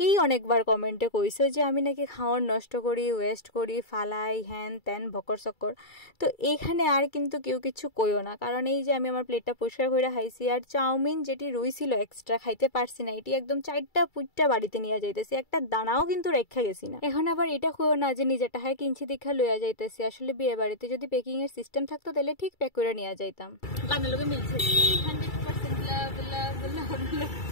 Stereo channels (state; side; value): late; right; 2.3 ms